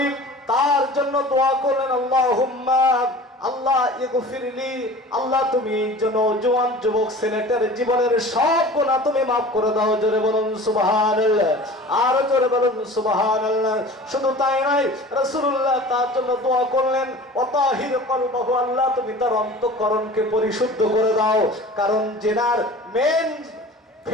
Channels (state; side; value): normal; both; correlation 0.40